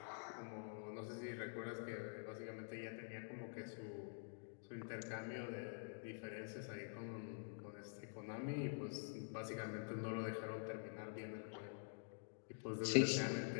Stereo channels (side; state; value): right; silent; digital silence